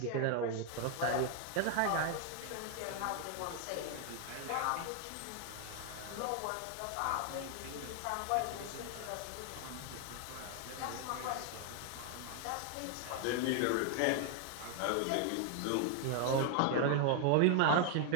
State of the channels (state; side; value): different; both; correlation 0.00